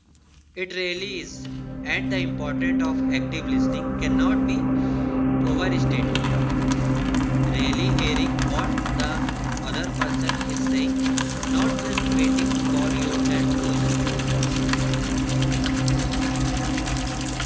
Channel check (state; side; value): identical; both; correlation 1.00